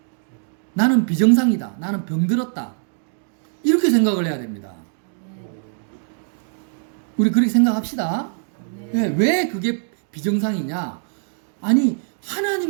나는 비정상이다. 나는 병들었다. 이렇게 생각을 해야 됩니다. 우리 그렇게 생각합시다. 왜 그게 비정상이냐? 아니,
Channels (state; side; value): silent; left; digital silence